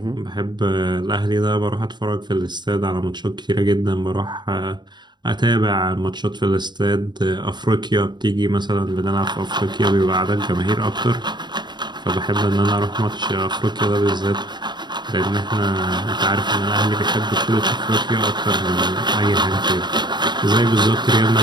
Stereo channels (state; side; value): late; left; 0.21 ms